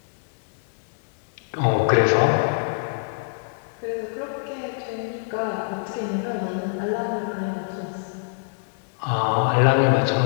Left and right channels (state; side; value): silent; right; digital silence